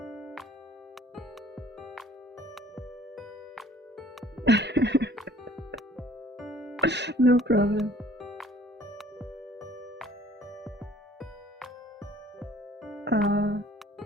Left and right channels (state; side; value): normal; both; correlation 0.54